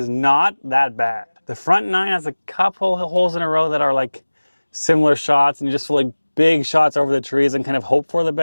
not that bad. The front 9 has a couple holes in a row that are like similar shots, and you just feel like big shots over the trees and kind of hope for the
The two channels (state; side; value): inverted; both; correlation -1.00